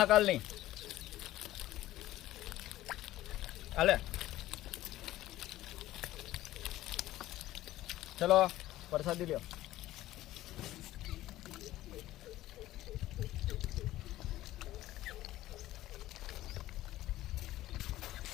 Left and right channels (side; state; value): right; quieter; 15.3 dB